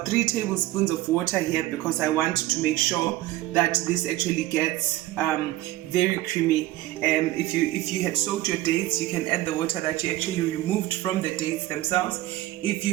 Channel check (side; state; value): left; quieter; 16.2 dB